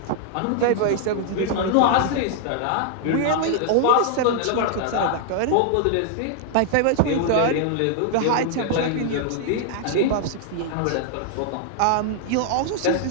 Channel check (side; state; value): both; different; correlation -0.01